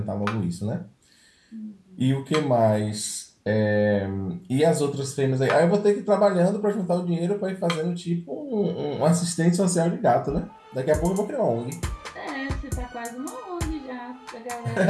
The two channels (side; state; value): both; identical; correlation 1.00